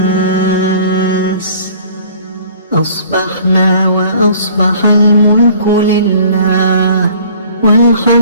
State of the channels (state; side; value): inverted; both; correlation -0.52